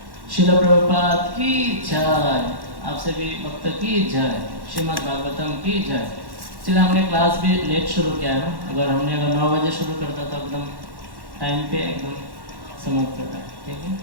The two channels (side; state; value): left; late; 1.1 ms